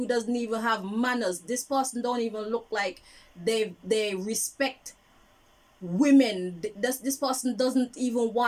doesn't even have manners. This person don't even look like they respect women. This person doesn't even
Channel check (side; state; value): both; identical; correlation 1.00